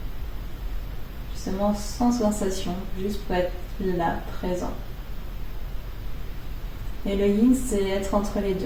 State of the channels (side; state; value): both; identical; correlation 1.00